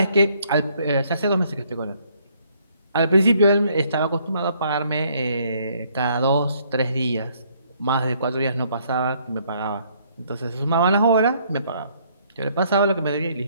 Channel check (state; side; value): inverted; both; correlation -0.66